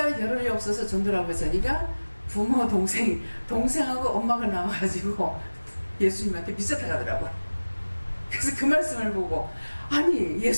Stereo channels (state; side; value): inverted; both; correlation -1.00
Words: 겨를이 없어서 전도라고 했으니까 부모 동생하고 엄마가 나와가지고 예수님한테 미쳤다 가더라고. 그래서 그 말씀을 보고 아니